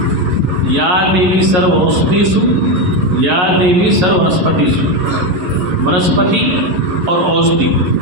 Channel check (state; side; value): late; left; 11 ms